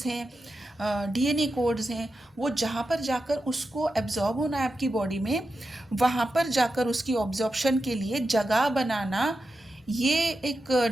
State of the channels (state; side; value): normal; both; correlation 0.90